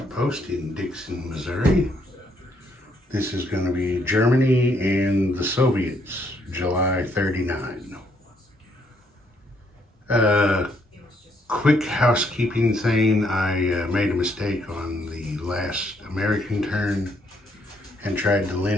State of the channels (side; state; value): both; normal; correlation 0.72